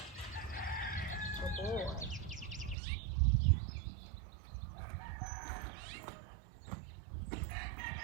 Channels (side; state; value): left; drops out; at 2.8 s